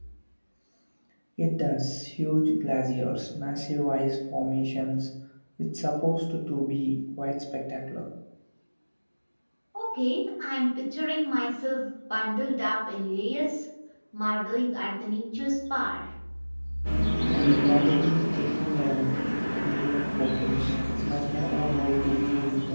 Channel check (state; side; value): inverted; both; correlation -1.00